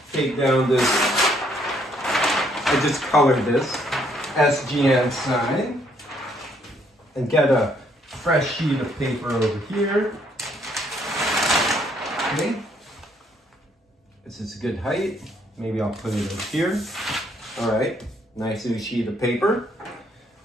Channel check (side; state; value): both; normal; correlation 0.68